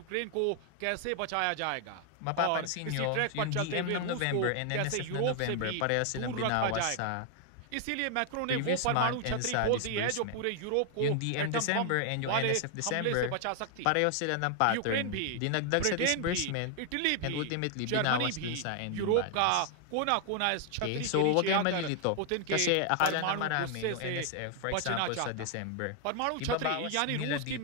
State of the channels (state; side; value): different; both; correlation 0.00